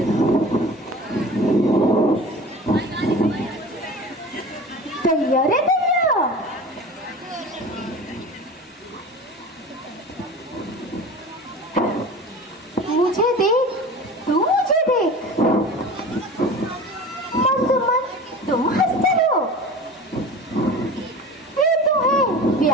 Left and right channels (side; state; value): both; normal; correlation 0.36